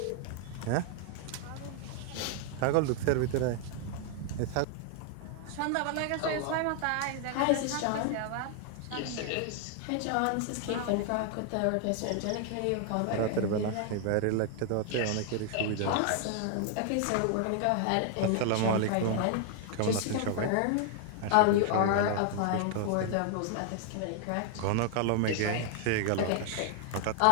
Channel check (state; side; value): different; both; correlation 0.00